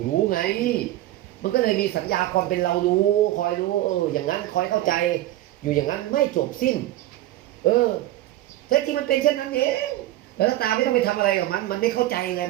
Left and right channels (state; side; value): quieter; left; 14.9 dB